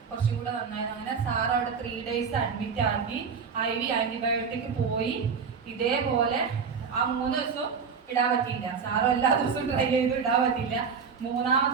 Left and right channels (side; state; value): left; quieter; 6.0 dB